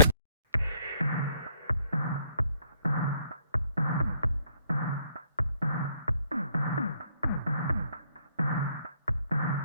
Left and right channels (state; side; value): inverted; both; correlation -0.67